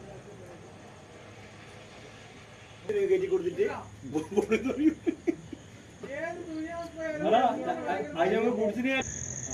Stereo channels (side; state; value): both; identical; correlation 1.00